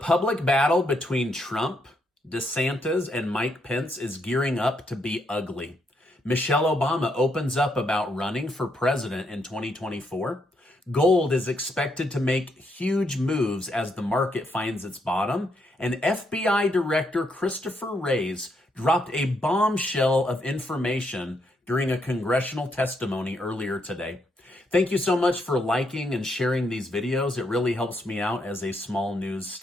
battle between Trump, DeSantis, and Mike Pence is gearing up to be ugly. Michelle Obama opens up about running for president in 2024. Gold is expected to make huge moves as the market finds its bottom. And FBI Director Christopher Wray dropped a bombshell of information during a congressional testimony earlier today. Thank you so much for liking and sharing these videos. It really helps me out as a small news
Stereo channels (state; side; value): normal; both; correlation 0.77